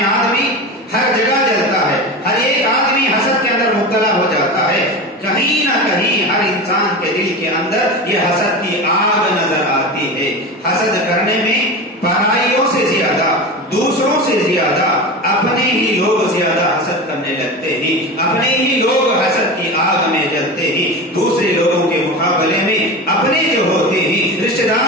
آدمی ہر جگہ جلتا ہے, ہر ایک آدمی حسد کے اندر مبتلا ہو جاتا ہے. کہیں نہ کہیں ہر انسان کے دل کے اندر یہ حسد کی آگ نظر آتی ہے. حسد کرنے میں پرائیوں سے زیادہ, دوسروں سے زیادہ اپنے ہی لوگ زیادہ حسد کرنے لگتے ہیں, اپنے ہی لوگ حسد کی آگ میں جلتے ہیں. دوسرے لوگوں کے مقابلے میں اپنے جو ہوتے ہیں, رشتے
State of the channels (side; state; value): both; normal; correlation 0.27